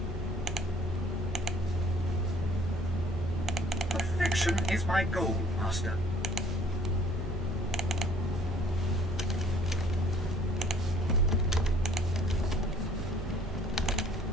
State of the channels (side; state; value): both; normal; correlation 0.57